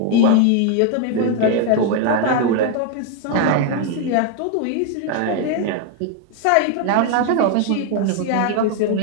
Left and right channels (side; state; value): both; different; correlation 0.01